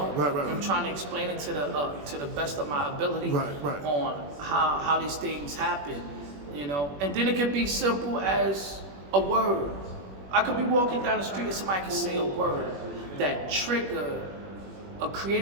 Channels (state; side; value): late; left; 21 ms